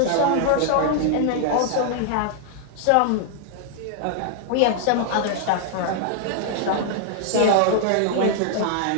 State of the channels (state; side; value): different; both; correlation 0.00